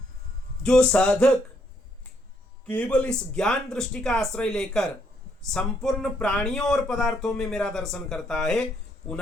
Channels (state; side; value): normal; both; correlation 0.72